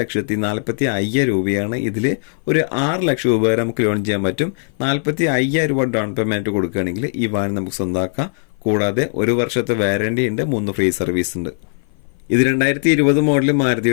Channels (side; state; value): right; silent; 57 dB below the other